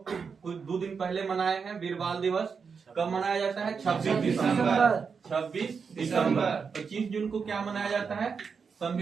कुछ 2 दिन पहले मनाए हैं। वीर बाल दिवस कब मनाया जाता है? 26 दिसंबर। 26 दिसंबर। 25 जून को क्या मनाया जाता है?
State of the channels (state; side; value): quieter; left; 5.7 dB